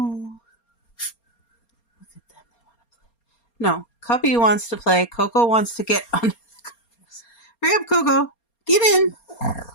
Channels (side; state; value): right; late; 4.3 ms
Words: Look at them. They want to play. No, Cubby wants to play. Coco wants to get under the covers. Hurry up, Coco. Get in.